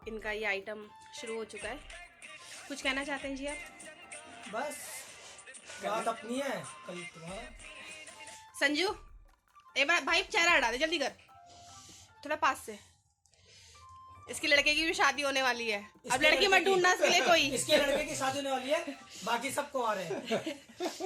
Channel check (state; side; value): identical; both; correlation 1.00